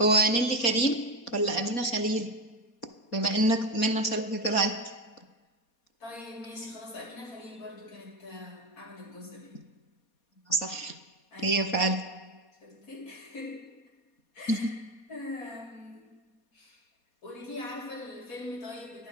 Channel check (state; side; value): late; right; 4.2 ms